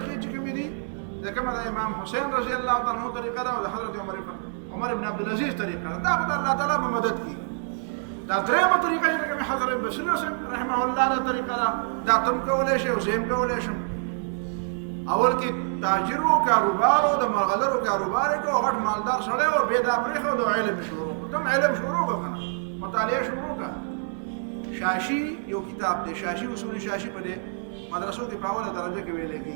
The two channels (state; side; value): silent; left; 61 dB below the other